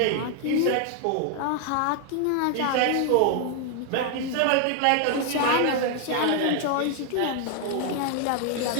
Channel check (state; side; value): different; both; correlation 0.01